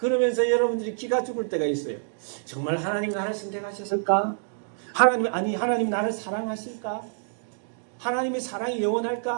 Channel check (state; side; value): silent; left; digital silence